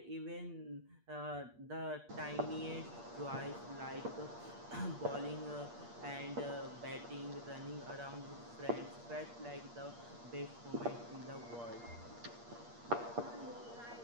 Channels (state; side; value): late; left; 8.5 ms